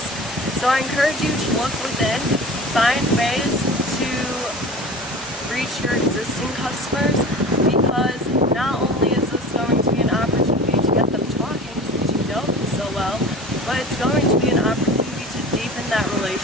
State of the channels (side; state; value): both; normal; correlation 0.37